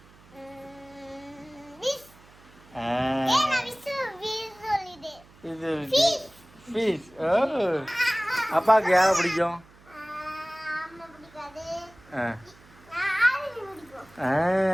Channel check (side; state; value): right; noise; hum, 25 dB below the sound